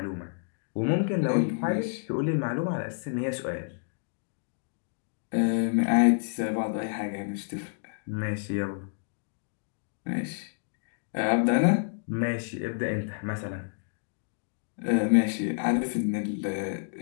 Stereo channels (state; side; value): silent; right; digital silence